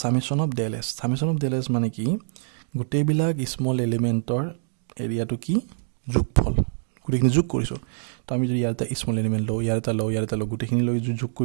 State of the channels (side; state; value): left; silent; digital silence